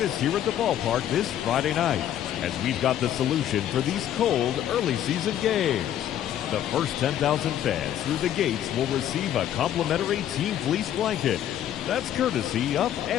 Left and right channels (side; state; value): right; quieter; 11.1 dB